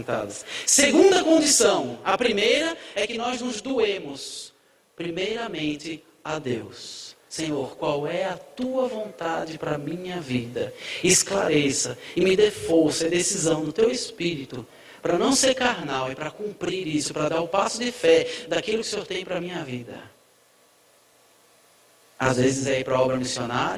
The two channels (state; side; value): identical; both; correlation 1.00